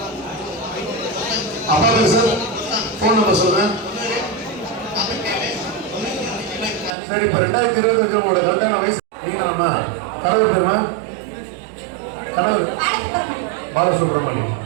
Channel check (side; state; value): left; drops out; at 7.0 s